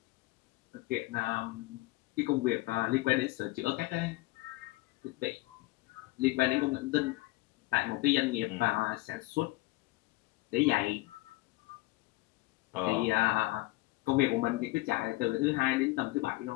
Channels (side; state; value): right; quieter; 20.3 dB